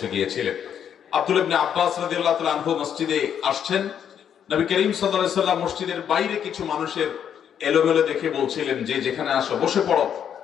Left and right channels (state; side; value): quieter; right; 8.7 dB